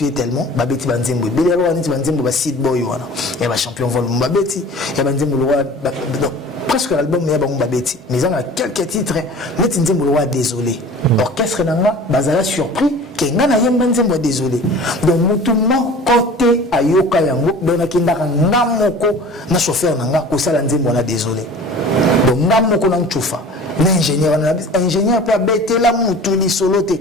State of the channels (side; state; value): both; normal; correlation 0.43